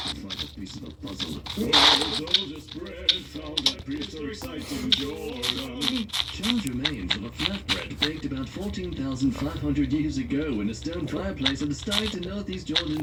a piece of the puzzle. Soldier spread found that prehistoric site in Jordan. Charles remains of a flatbread baked about 14,500 years ago in a stone fireplace at the site in northeast Jordan,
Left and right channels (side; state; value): both; identical; correlation 1.00